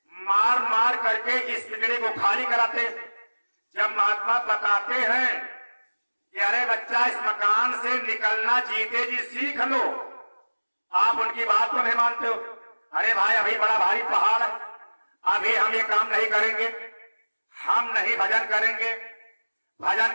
मार मार करके इस पिंजरे को खाली कराते। जब महात्मा बताते हैं कि अरे बच्चा इस मकान से निकलना जीते जी सीख लो, आप उनकी बात को नहीं मानते हो। अरे भाई अभी बड़ा भारी पहाड़ है, अभी हम ये काम नहीं करेंगे, हम नहीं भजन करेंगे,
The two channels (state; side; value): inverted; both; correlation -1.00